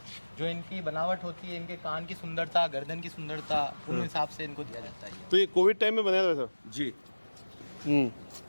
जो इनकी बनावट होती है, इनके कान की सुंदरता, गर्दन की सुंदरता, उन हिसाब से इनको दिया जाता है। तो ये कोविड टाइम में बनाया था वैसा? जी।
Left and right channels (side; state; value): both; inverted; correlation -1.00